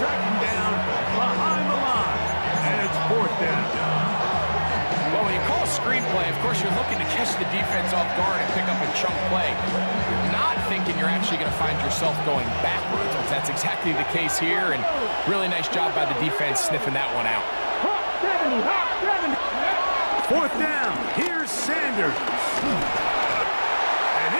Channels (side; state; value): both; inverted; correlation -1.00